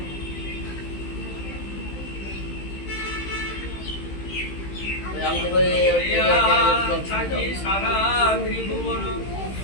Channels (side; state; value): right; late; 15 ms